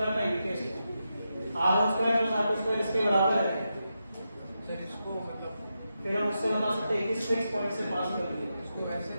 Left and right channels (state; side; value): inverted; both; correlation -0.87